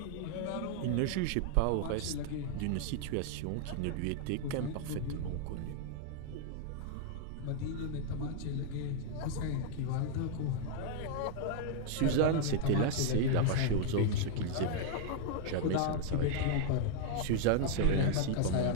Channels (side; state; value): both; different; correlation 0.00